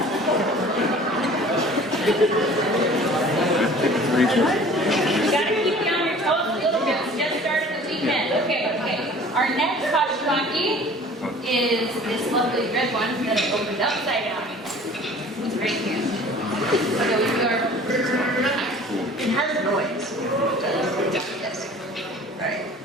You gotta keep you on your toes a little bit. We just started the weekend. Okay. Our next hashimaki is this lovely red one that I opened upside down. It's right here. So we do our. It has noise. Yes. Right.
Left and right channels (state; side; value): normal; both; correlation 0.47